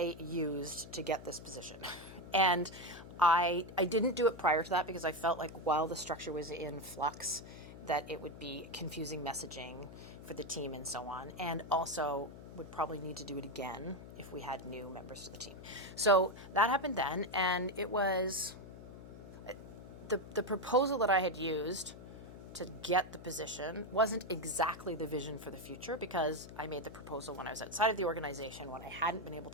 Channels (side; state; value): left; noise; hum, 14 dB below the sound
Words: used to get this position. And I didn't do it prior to that because I felt like while the structure was in flux, that it would be confusing messaging for the team and so on. And also would probably need to do it again if we had new members to the team. So that happened then, and it was the proposal that I had used to get the position wasn't exactly the vision for the future because I made the proposal when I was outside of the organization, when I hadn't been able